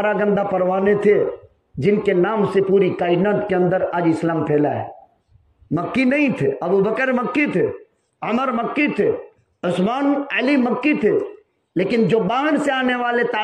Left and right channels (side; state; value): both; identical; correlation 1.00